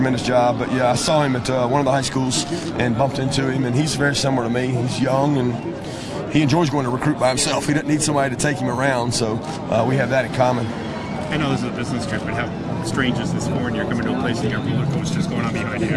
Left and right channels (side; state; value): both; identical; correlation 1.00